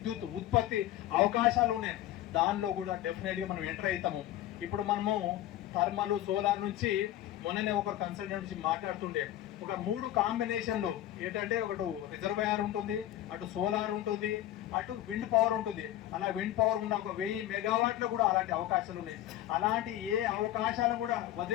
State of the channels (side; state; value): right; quieter; 13.4 dB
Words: ఉత్పత్తి అవకాశాలు ఉన్నాయి. దానిలో కూడా డెఫినెట్ గా మనం ఎంటర్ అవుతాము. ఇప్పుడు మనము థర్మల్, సోలార్ నుంచి మొన్ననే ఒకరు కన్సల్టెంట్ నుంచి మాట్లాడుతుండే, ఒక 3 కాంబినేషన్లు ఏంటంటే, ఒకటి రిజర్వాయర్ ఉంటుంది, అటు సోలార్ ఉంటుంది, అటు విండ్ పవర్ ఉంటుంది. అలా విండ్ పవర్ ఉన్న ఒక 1000 మెగావాట్లు కూడా అలాంటి అవకాశాలు ఉన్నాయి. అలాంటి ఏ అవకాశాలు కూడా